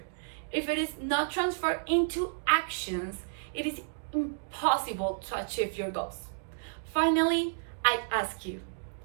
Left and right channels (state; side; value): silent; left; digital silence